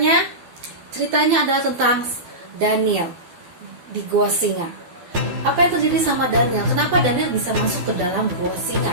Ceritanya adalah tentang Daniel di gua singa. Apa yang terjadi sama Daniel? Kenapa Daniel bisa masuk ke dalam gua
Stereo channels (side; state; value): left; late; 12 ms